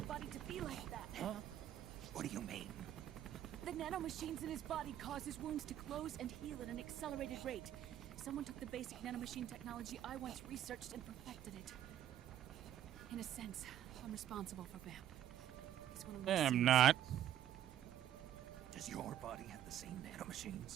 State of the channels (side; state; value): left; quieter; 11.2 dB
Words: body to be like that. Huh? What do you mean? The nanomachines in his body cause his wounds to close and heal at an accelerated rate. Someone took the basic nanomachine technology I once researched and perfected it. In a sense, I'm responsible for Vamp. He's one of my I'm sons. not. Does your body have the same